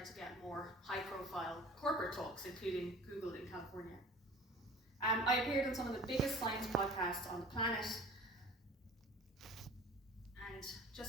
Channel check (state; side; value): normal; both; correlation 0.44